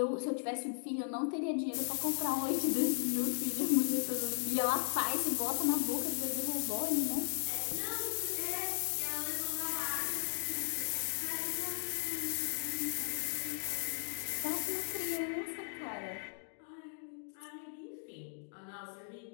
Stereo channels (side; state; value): right; silent; digital silence